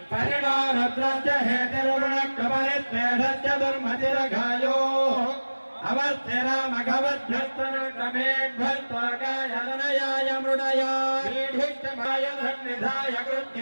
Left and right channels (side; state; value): both; inverted; correlation -1.00